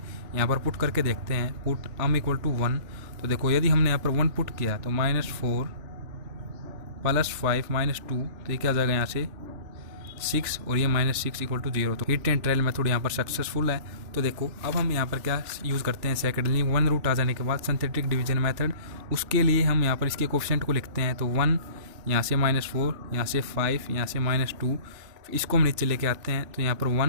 यहाँ पर पुट करके देखते हैं। Put m equal to 1। तो देखो यदि हमने यहाँ पर 1 पुट किया तो -4 प्लस 5 माइनस 2, तो ये क्या आ जाएगा यहाँ से 6 और ये -6 इक्वल टू 0। तो हीट एंड ट्रायल मेथड यहाँ पर सक्सेसफुल है। तो देखो अब हम यहाँ पर क्या यूज़ करते हैं, सेकेंडली 1 रूट आ जाने के बाद सिंथेटिक डिवीजन मेथड, उसके लिए हम यहाँ पर इसके कोफिशिएंट को लिखते हैं। तो 1 यहाँ से -4, यहाँ से 5, यहाँ से -2, इसको हम नीचे लेके आते हैं। तो यहाँ पर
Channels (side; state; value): left; late; 3.4 ms